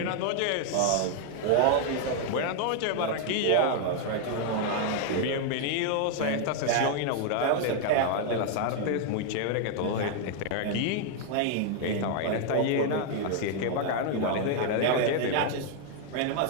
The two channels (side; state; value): both; different; correlation 0.00